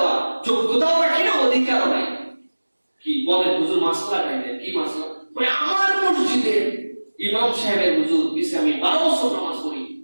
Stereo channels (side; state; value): both; inverted; correlation -1.00